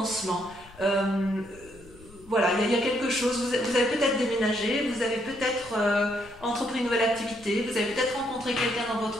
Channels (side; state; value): left; noise; rumble, 23 dB below the sound